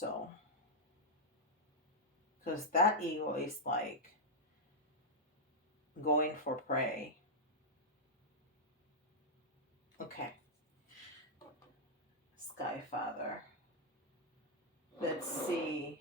because that eagle is like going for prey. Okay. Sky Father. Let's see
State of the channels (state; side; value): normal; both; correlation -0.05